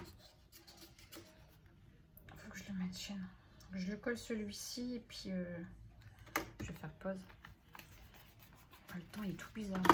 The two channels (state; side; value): identical; both; correlation 1.00